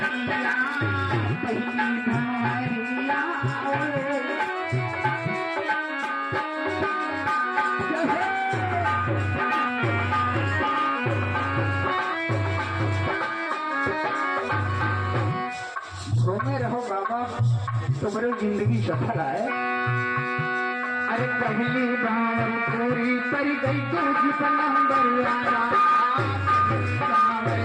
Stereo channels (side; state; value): both; identical; correlation 1.00